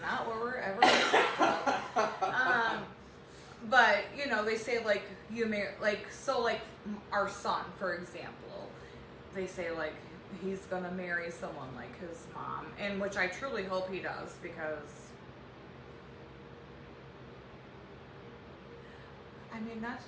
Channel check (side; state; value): both; identical; correlation 1.00